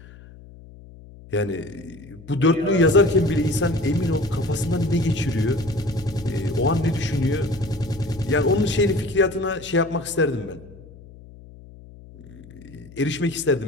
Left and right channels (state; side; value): noise; left; hum, 20 dB below the sound